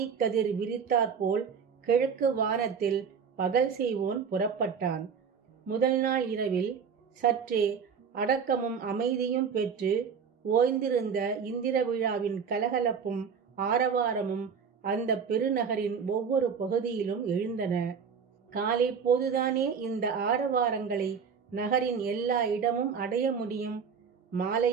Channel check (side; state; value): left; quieter; 6.4 dB